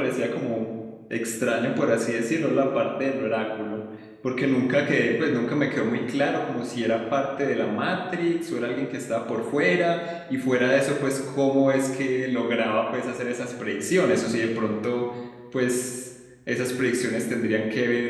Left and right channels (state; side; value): identical; both; correlation 1.00